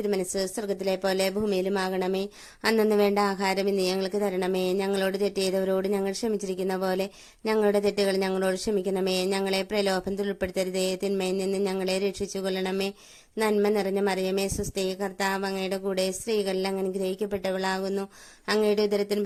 സ്വർഗത്തിലെ പോലെ ഭൂമിയിലുമാകണമേ. അന്നന്ന് വേണ്ട ആഹാരം ഇന്ന് ഞങ്ങൾക്ക് തരണമേ. ഞങ്ങളോട് തെറ്റ് ചെയ്തവരോട് ഞങ്ങൾ ക്ഷമിച്ചിരിക്കുന്ന പോലെ ഞങ്ങളുടെ തെറ്റുകൾ ഞങ്ങളോട് ക്ഷമിക്കണമേ. ഞങ്ങളെ പ്രലോഭനത്തിൽ ഉൾപ്പെടുത്തരുതേ, തിന്മയിൽ നിന്ന് ഞങ്ങളെ രക്ഷിച്ചുകൊള്ളണമേ. നന്മ നിറഞ്ഞ മറിയമേ, സ്വസ്തി, കർത്താവ് അങ്ങയുടെ കൂടെ സ്ത്രീകളിൽ അങ്ങ് അനുഗ്രഹിക്കപ്പെട്ടവളാകുന്നു. അങ്ങയുടെ ഉദരത്തിന്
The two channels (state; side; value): identical; both; correlation 1.00